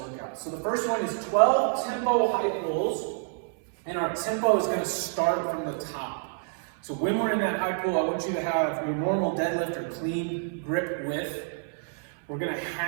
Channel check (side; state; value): left; silent; 59 dB below the other